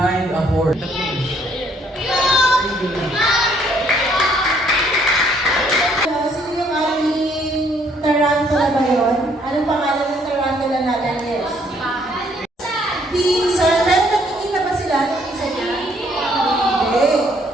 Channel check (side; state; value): both; normal; correlation 0.66